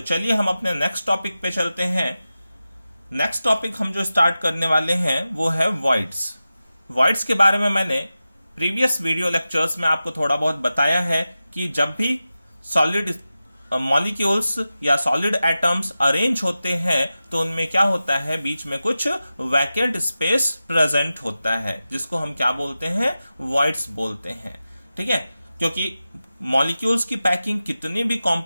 चलिए हम अपने नेक्स्ट टॉपिक पे चलते हैं। नेक्स्ट टॉपिक हम जो स्टार्ट करने वाले हैं वो है वॉइड्स। वॉइड्स के बारे में मैंने प्रीवियस वीडियो लेक्चर्स में आपको थोड़ा बहुत बताया है कि जब भी सॉलिड मॉलिक्यूल्स या सॉलिड एटम्स अरेंज होते हैं तो उनमें क्या होता है, बीच में कुछ वैकेंट स्पेस प्रेजेंट होता है, जिसको हम क्या बोलते हैं, वॉइड्स बोलते हैं। ठीक है, क्योंकि मॉलिक्यूल्स की पैकिंग कितनी भी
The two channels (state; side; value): inverted; both; correlation -0.94